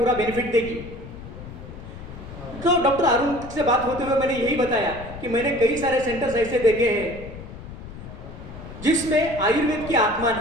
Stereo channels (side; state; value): left; noise; rumble, 13 dB below the sound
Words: बेनिफिट देगी। तो डॉक्टर अरुण से बात होते हुए मैंने यही बताया कि मैंने कई सारे सेंटर्स ऐसे देखे हैं जिसमें आयुर्वेद की आत्मा